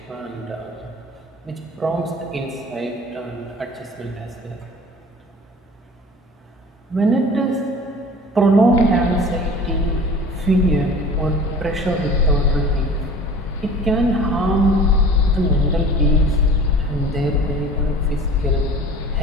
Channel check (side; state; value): both; normal; correlation 0.43